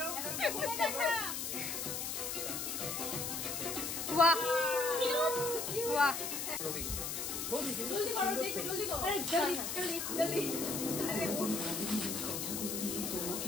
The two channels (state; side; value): noise; left; hiss, 3 dB below the sound